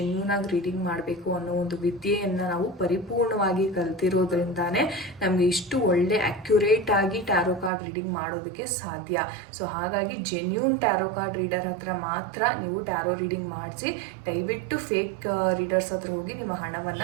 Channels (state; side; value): drops out; left; at 7.7 s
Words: ಆಗಿ ರೀಡಿಂಗ್ ಮಾಡಬೇಕು ಅನ್ನೋ ಒಂದು ವಿದ್ಯೆಯನ್ನು ನಾವು ಪರಿಪೂರ್ಣವಾಗಿ ಕಲ್ತಿರೋದ್ರಿಂದಾನೇ ನಮಗೆ ಇಷ್ಟು ಒಳ್ಳೆ ಅಕ್ಯುರೇಟ್ ಆಗಿ ಟ್ಯಾರೋ ಕಾರ್ಡ್ ರೀಡಿಂಗ್ ಮಾಡೋದಕ್ಕೆ ಸಾಧ್ಯ. ಹಾಗಾಗಿ ಜೆನ್ಯೂನ್ ಟ್ಯಾರೋ ಕಾರ್ಡ್ ರೀಡರ್ ಹತ್ರ ಮಾತ್ರ ನೀವು ಟ್ಯಾರೋ ರೀಡಿಂಗ್ ಮಾಡಿಸಿ. ದಯವಿಟ್ಟು ಫೇಕ್ ರೀಡರ್ಸ್ ಹತ್ರ ಹೋಗಿ ನಿಮ್ಮ